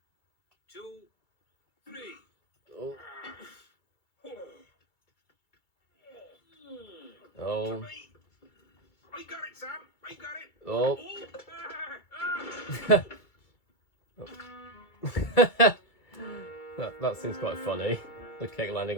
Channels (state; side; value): late; right; 2.3 ms